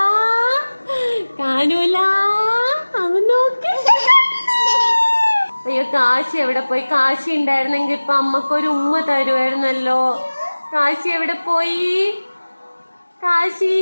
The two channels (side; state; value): both; inverted; correlation -1.00